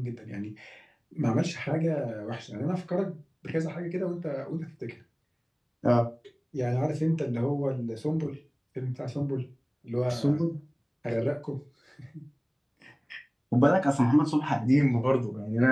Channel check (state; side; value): identical; both; correlation 1.00